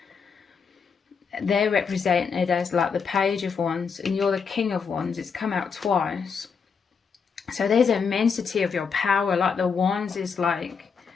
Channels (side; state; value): right; quieter; 5.9 dB